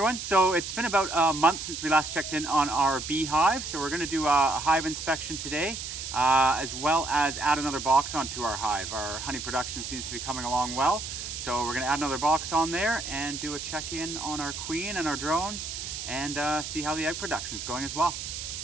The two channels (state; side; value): noise; right; hiss, 7 dB below the sound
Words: everyone. So it's been about a month since we last checked in on our bee hive. So we're going to do a hive inspection today, as well as add another box onto our hive. Our honey production seems to be coming along well. So we're going to add another box on there and do a check-in on our queen and our drones and see how the egg production is going as well.